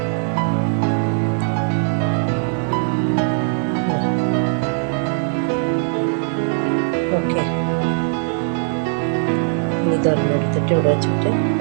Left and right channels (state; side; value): silent; left; 64 dB below the other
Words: ഓക്കെ, ഇതൊരെണ്ണം എടുത്തിട്ട് ഇവിടെ വെച്ചിട്ട്